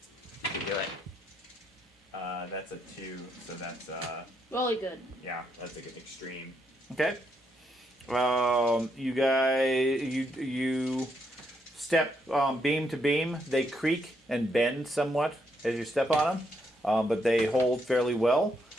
You do it. That's a 2, so that's Really good. yeah, that's a good extreme. Okay. You guys, you step beam to beam. They creak and bend somewhat as you step on them, but they hold fairly well.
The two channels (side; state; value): both; normal; correlation 0.77